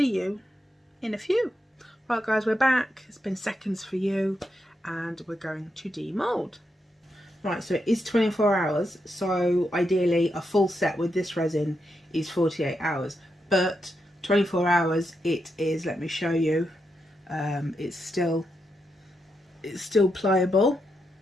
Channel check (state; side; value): normal; both; correlation 0.84